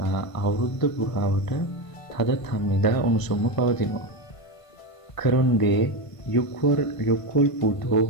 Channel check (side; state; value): right; late; 1.5 ms